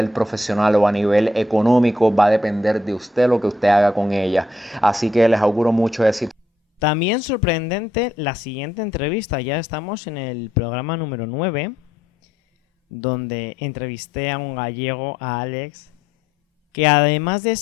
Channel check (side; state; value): both; normal; correlation 0.74